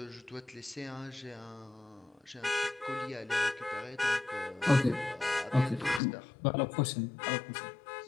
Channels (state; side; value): drops out; right; at 6.0 s